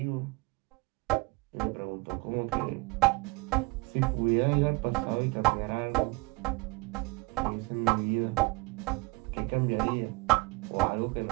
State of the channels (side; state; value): left; quieter; 25.1 dB